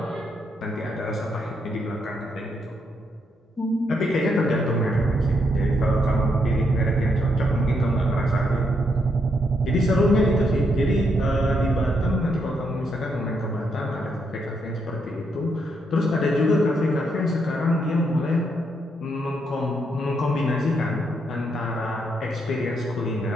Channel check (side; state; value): both; normal; correlation 0.77